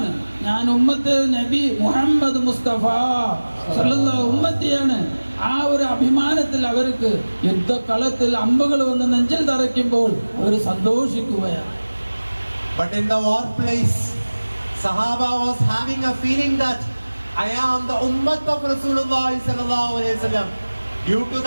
ഞാൻ ഉമ്മത്ത് നബി മുഹമ്മദ് മുസ്തഫ സല്ലല്ലാഹു ഉമ്മത്തിയാണ്, ആ ഒരു അഭിമാനത്തിൽ അവർക്ക് യുദ്ധക്കളത്തിൽ അമ്പുകൾ വന്ന് നെഞ്ചിൽ തറയ്ക്കുമ്പോൾ അവർ സന്തോഷിക്കുകയാണ്. But in the war place, Sahaba was having a feeling that I am the ummah of Rasulullah sallallahu alaihi wasallam. Due to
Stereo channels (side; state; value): both; inverted; correlation -1.00